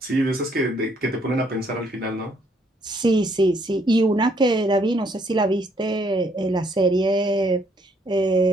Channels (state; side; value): normal; both; correlation 0.68